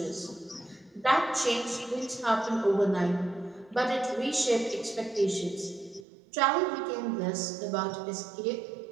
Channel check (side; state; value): left; drops out; at 6.1 s